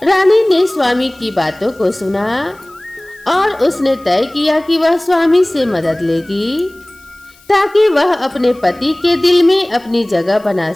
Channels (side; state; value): left; noise; hiss, 28 dB below the sound